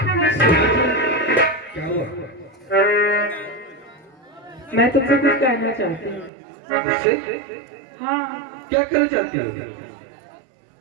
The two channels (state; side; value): drops out; left; at 6.3 s